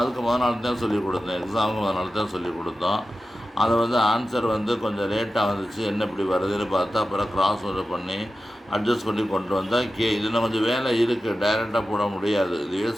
முதல் நாள் தான் சொல்லிக் கொடுத்தோம், எக்ஸாமுக்கு முதல் நாள் தான் சொல்லிக் கொடுத்தோம். அதை வந்து ஆன்சர் வந்து கொஞ்சம் லேட்டாக வந்துச்சு, என்ன இப்படி வருதுன்னு பார்த்து அப்புறம் கிராஸ் ஓவர் பண்ணி அட்ஜஸ்ட் பண்ணி கொண்டு வந்தால் இதில் கொஞ்சம் வேலை இருக்குது, டைரெக்டாக போட முடியாது. இதுவே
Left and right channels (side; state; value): both; normal; correlation 0.93